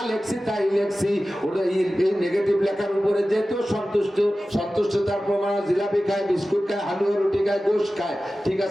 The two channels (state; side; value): normal; both; correlation 0.95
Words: লেখছি তাই লেখছি। ওটা এই নেগেটিভ লেখার উপরে যেহেতু সন্তুষ্টতার প্রমাণ, জিলাপি খায়, বিস্কুট খায়, হালুয়া রুটি খায়, গোশ খায়, ঠিক